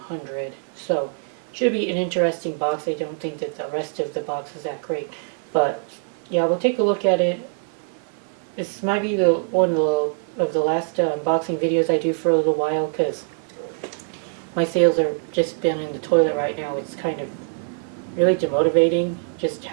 100, so should be an interesting box. I don't think that the rest of the box is that great, but yeah, we'll take a look at it. This might be the one of the last unboxing videos I do for a little while, because my sales are just been in the toilet right now. It's kind of really demotivating just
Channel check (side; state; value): left; silent; digital silence